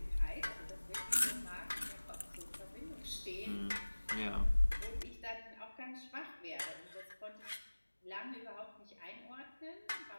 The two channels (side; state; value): both; inverted; correlation -1.00